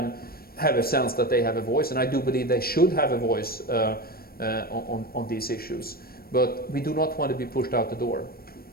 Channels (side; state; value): right; late; 0.44 ms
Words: have a sense that they have a voice, and I do believe they should have a voice on these issues. But we do not want to be pushed out the door.